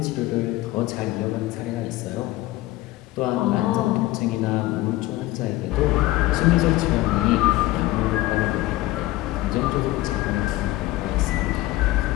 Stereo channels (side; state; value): right; quieter; 17.6 dB